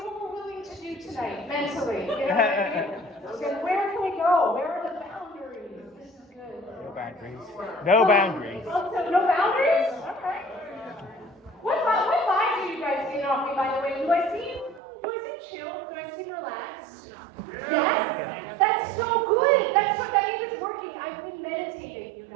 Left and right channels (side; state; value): left; drops out; at 14.8 s